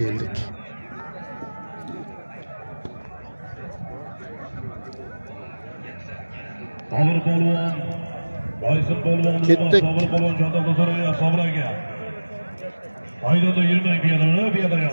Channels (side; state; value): both; inverted; correlation -1.00